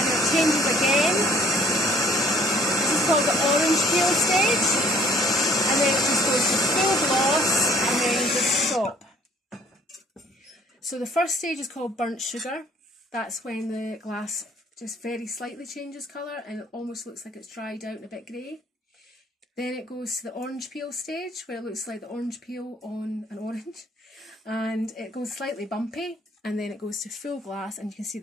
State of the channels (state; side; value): normal; both; correlation 0.59